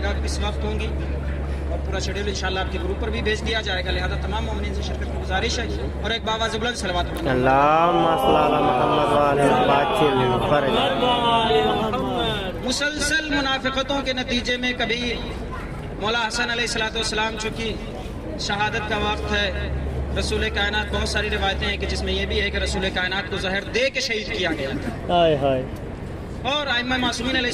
گا کس وقت ہوں گی، اور پورا شیڈول انشاءاللہ آپ کے گروپ پر بھی بھیج دیا جائے گا، لہذا تمام مومنین سے شرکت کی گزارش ہے۔ اور ایک باواز بلند صلوات پڑھنا۔ اللہم صل علی محمد وآل محمد وعجل۔ مسلسل منافقتوں کے نتیجے میں کبھی مولا حسن علیہ الصلوۃ والسلام چونکہ شہادت کا وقت ہے، رسول کائنات بہت ساری روایتیں ہیں کہ جس میں یہ بھی ہے کہ رسول کائنات کو زہر دے کے شہید کیا گیا تھا، اور ائمہ معصومین علیہ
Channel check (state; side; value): identical; both; correlation 1.00